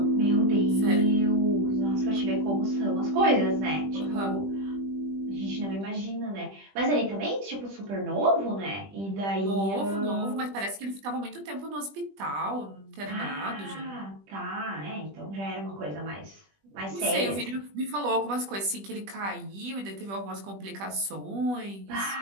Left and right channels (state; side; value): late; left; 20 ms